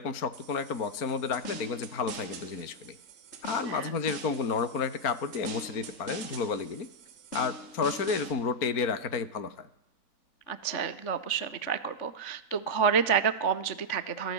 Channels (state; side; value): late; right; 3.5 ms